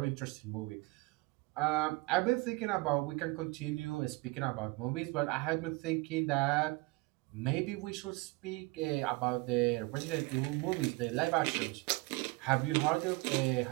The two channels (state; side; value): quieter; left; 24.5 dB